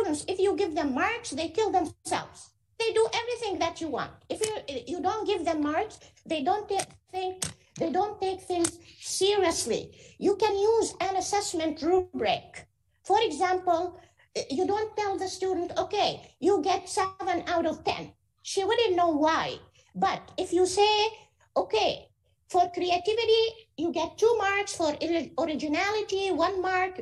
if you give them marks, they kill themselves. They do everything that you want. If you don't give them marks, they don't take things seriously. You can use an assessment rubric. For example, you don't tell the student, okay, you get 7 out of 10. She wouldn't know why. But if you say, okay, for creativity, you get 2 marks, for originality, 1 mark,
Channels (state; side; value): identical; both; correlation 1.00